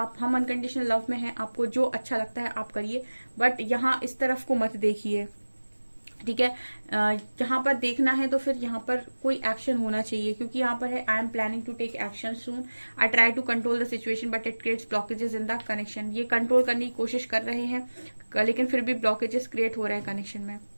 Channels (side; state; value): both; inverted; correlation -1.00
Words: हम अनकंडीशनल लव में हैं, आपको जो अच्छा लगता है आप करिए, बट यहाँ इस तरफ को मत देखिए, ठीक है। यहाँ पर देखना है तो फिर यहाँ पर कोई एक्शन होना चाहिए, क्योंकि यहाँ पर है I am planning to take action soon, I try to control the situation but it creates blockages in the connection. ये कंट्रोल करने की कोशिश कर रहे हैं लेकिन फिर भी ब्लॉकेजेस क्रिएट हो रहे हैं कनेक्शन में।